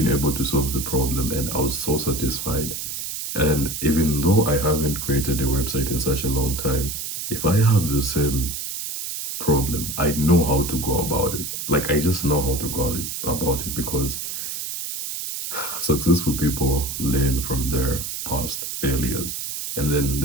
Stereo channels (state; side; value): noise; right; hiss, 5 dB below the sound